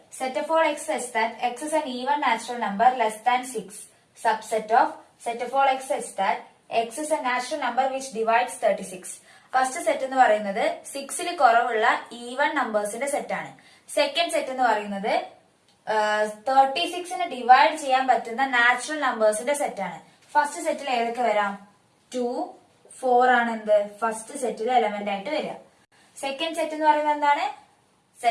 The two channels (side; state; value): both; identical; correlation 1.00